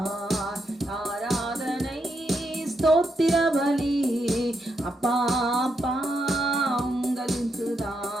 ஆராதனை. ஸ்தோத்திர பலி அப்பா அப்பா உங்களுக்கு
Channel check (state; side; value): normal; both; correlation 0.81